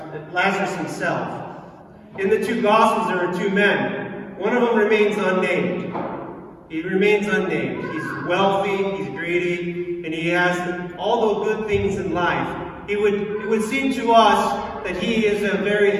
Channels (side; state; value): both; identical; correlation 1.00